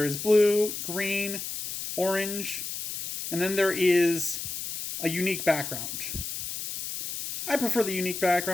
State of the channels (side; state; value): left; noise; hiss, 6 dB below the sound